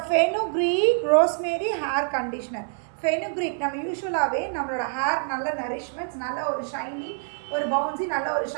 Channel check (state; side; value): silent; left; 61 dB below the other